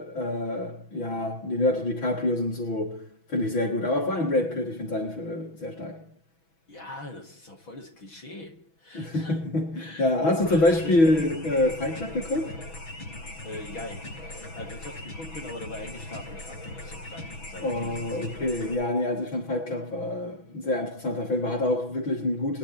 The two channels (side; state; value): right; late; 6.1 ms